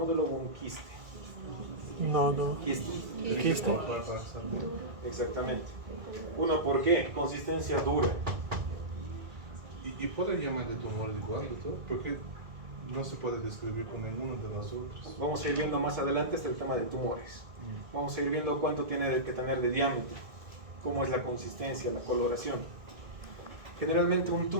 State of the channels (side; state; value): left; late; 2.0 ms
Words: o un quiste? No, no. Quiste. Quiste. Exactamente. Uno, ¿por qué? Consistencia dura. Y puede llamar de tumor igual, doctor, porque no se puede describir con ninguno de las otras. Vamos a ir viendo más adelante el tema de tumores. Vamos a ir viendo cuánto tiene que tener de diámetro, cómo es la consistencia, la coloración. Generalmente un